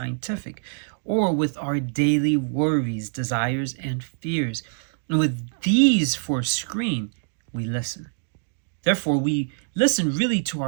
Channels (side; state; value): left; silent; digital silence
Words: or with our daily worries, desires, and fears. And with these for a screen, we listen. Therefore, we listen really to